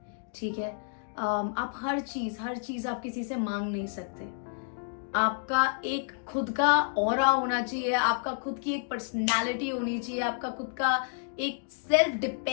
ठीक है, आप हर चीज आप किसी से मांग नहीं सकते। आपका एक खुद का ऑरा होना चाहिए, आपका खुद की एक पर्सनालिटी होनी चाहिए, आपका खुद का एक सेल्फ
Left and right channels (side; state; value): right; silent; digital silence